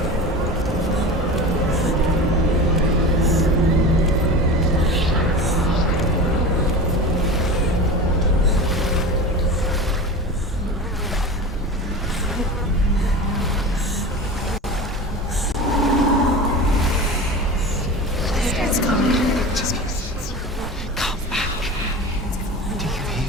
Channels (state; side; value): normal; both; correlation 0.31